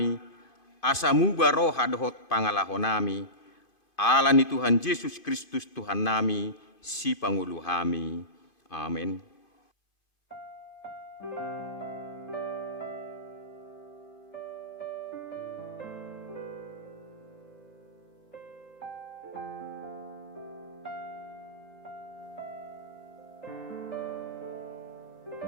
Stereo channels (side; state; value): right; late; 2.5 ms